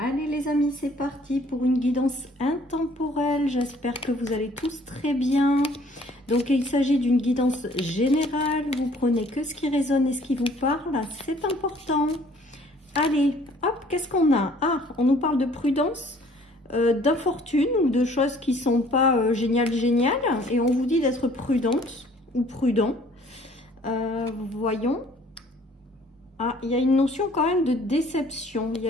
les amis, c'est parti pour une guidance intemporelle. J'espère que vous allez tous très bien. Donc il s'agit d'une guidance générale. Vous prenez que ce qui résonne et ce qui vous parle. C'est important. Allez, hop, qu'est-ce qu'on a? Ah, on nous parle de prudence, d'infortune ou de choses qui sont pas géniales. Et on vous dit d'être prudente ou prudent. Voyons. Ah, il y a une notion quand même de déception, il y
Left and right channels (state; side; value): normal; both; correlation 0.57